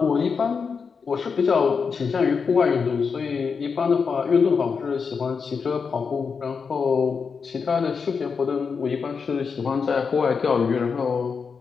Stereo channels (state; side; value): quieter; right; 5.6 dB